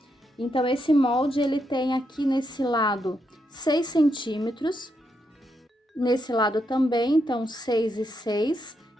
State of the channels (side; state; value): both; normal; correlation 0.81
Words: Então, esse molde, ele tem aqui nesse lado 6 centímetros, nesse lado também, então 6 e 6.